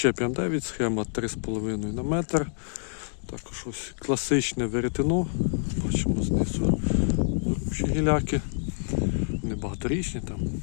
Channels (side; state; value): right; silent; digital silence